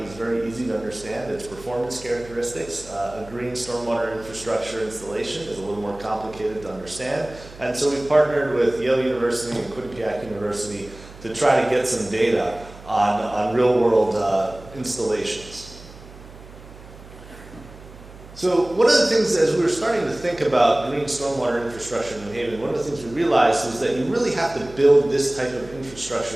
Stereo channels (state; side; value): noise; right; hum, 19 dB below the sound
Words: very easy to understand its performance characteristics. A green stormwater infrastructure installation is a little more complicated to understand. And so we've partnered with Yale University and Quinnipiac University to try to get some data on real-world installations. So one of the things, as we were starting to think about green stormwater infrastructure in New Haven, one of the things we realized was that you really have to build this type of